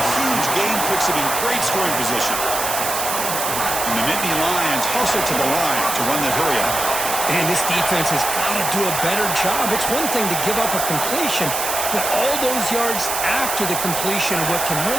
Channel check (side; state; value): right; noise; hiss, 2 dB below the sound